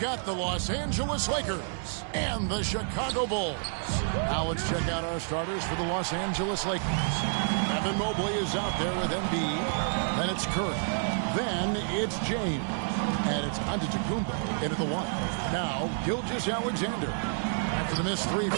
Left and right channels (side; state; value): left; silent; 58 dB below the other